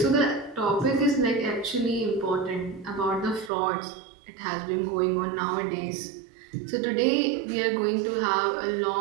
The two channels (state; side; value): drops out; left; at 3.5 s